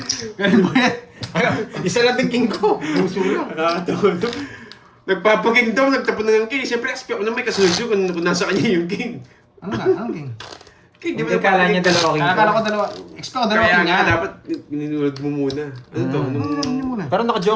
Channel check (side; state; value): both; identical; correlation 1.00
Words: Ganun ba yan? Isa lang din king ko. Puso lang. Nakakatawa to. Nagpapaking daw, nagtapon na ng king. Siyempre, expect ko na may kasunod yun kung nasa kanya yung king. Ano nga? Anong king? King, Hindi kala niya dalawa king ko. Akala ko dalawa. Expect ko dalawa Kaya king nga, nga. dapat ninunod mo muna. Ano to? Nung... Ano niyo muna? Pero